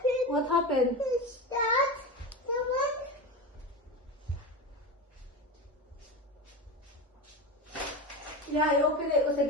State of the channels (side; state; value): both; normal; correlation 0.23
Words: What happened? Is that the one? Yeah, I opened it because I